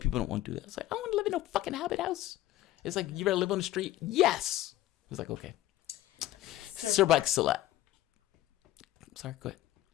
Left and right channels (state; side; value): quieter; right; 15.0 dB